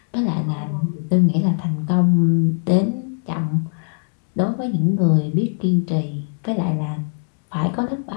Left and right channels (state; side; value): silent; right; digital silence